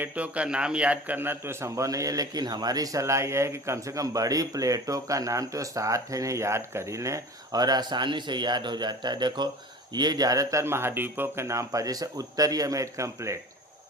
का नाम याद करना तो संभव नहीं है, लेकिन हमारी सलाह यह है कि कम से कम बड़ी प्लेटों का नाम तो 7 है, इन्हें याद कर ही लें और आसानी से याद हो जाता है। देखो, ये ज़्यादातर महाद्वीपों के नाम पर, जैसे उत्तरी अमेरिकन प्लेट,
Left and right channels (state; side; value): normal; both; correlation 0.39